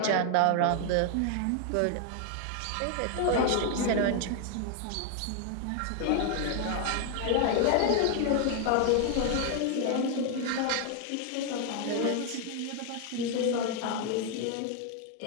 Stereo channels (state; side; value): different; both; correlation 0.00